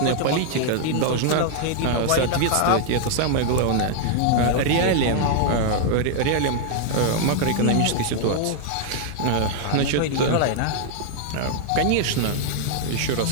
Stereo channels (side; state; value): both; different; correlation -0.01